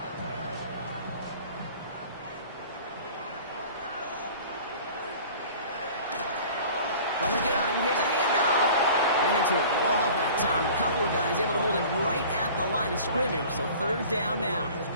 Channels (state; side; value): inverted; both; correlation -0.44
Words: From the gun, here's a handoff. Ran into a wall that time. A couple of guys able to hold it right at the line of scrimmage, so 3rd down now.